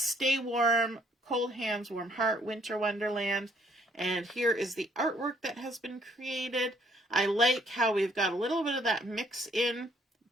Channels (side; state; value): both; normal; correlation 0.65